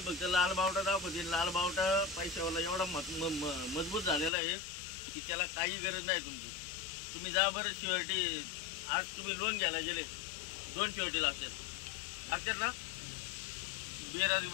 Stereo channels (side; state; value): right; drops out; at 4.3 s